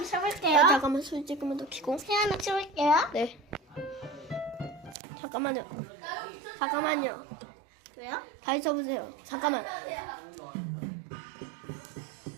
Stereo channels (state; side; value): drops out; left; at 5.0 s